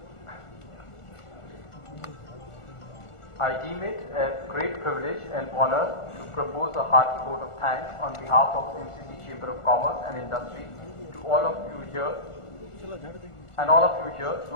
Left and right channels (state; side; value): late; right; 1.4 ms